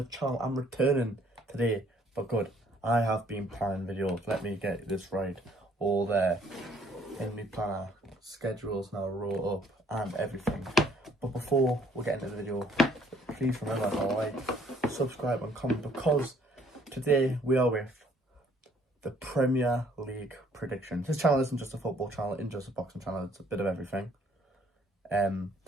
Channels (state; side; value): normal; both; correlation 0.62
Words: channel. I'm returning today for good. I have been planning videos. Let me get this right. All there in my planner. Schedules now roll up and everything. But before we get into the video, please remember to like, subscribe and comment, because today we are with the Premier League predictions. This channel isn't just a football channel, it's just a boxing channel. It's a bit of everything.